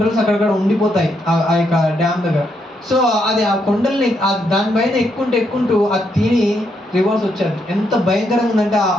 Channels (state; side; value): normal; both; correlation 0.77